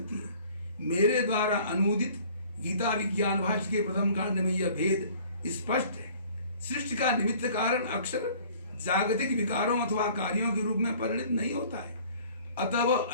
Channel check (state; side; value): inverted; both; correlation -0.52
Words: है। मेरे द्वारा अनुदित गीता विज्ञान भाष्य के प्रथम कांड में यह भेद स्पष्ट है। सृष्टि का निमित्त कारण अक्षर जागतिक विकारों अथवा कार्यों के रूप में परिणित नहीं होता है, अतः वह